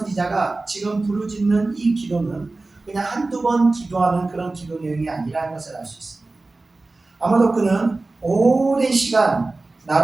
지금 부르짖는 이 기도는 그냥 한두 번 기도하는 그런 기도 내용이 아니라는 것을 알 수 있습니다. 아마도 그는 오랜 시간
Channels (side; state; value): left; quieter; 3.3 dB